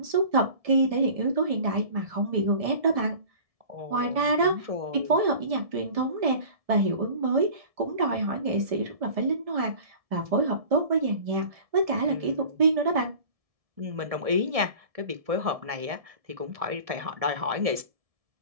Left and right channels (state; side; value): late; left; 1.7 ms